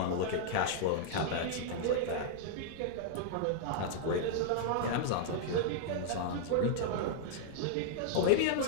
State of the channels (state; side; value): different; both; correlation -0.01